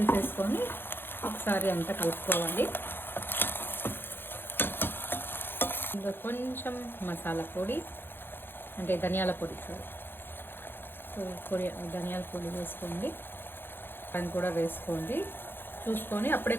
ఒకసారి అంతా కలుపుకోవాలి. ఇంకా కొంచెం మసాలా పొడి అంటే ధనియాల పొడి, సో ధనియాల పొడి వేసుకోండి. దాన్ని కూడా వేసుకోండి చూసుకొని. అప్పుడే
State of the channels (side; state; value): right; late; 0.10 ms